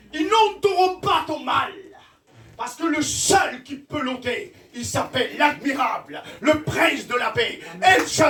Ils n'ôteront pas ton mal. Parce que le seul qui peut l'ôter, il s'appelle l'admirable, le prince de la paix, El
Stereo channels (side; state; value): both; identical; correlation 1.00